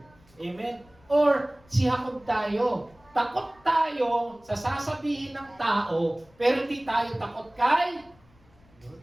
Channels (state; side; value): noise; left; rumble, 29 dB below the sound